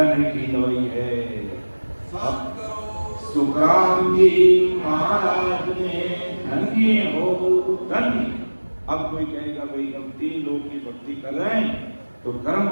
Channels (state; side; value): inverted; both; correlation -1.00